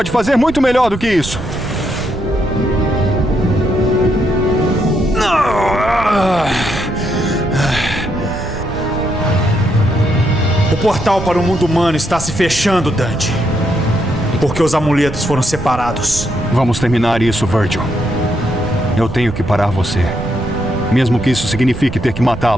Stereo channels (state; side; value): noise; right; rumble, 11 dB below the sound